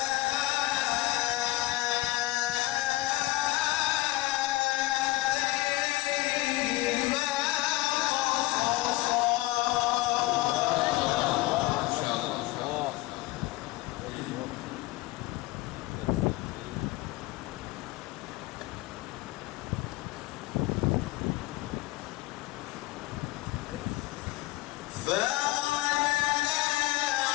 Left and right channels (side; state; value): right; quieter; 19.1 dB